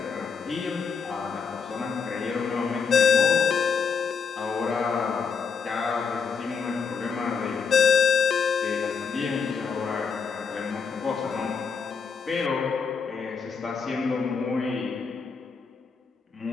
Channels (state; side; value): quieter; right; 5.8 dB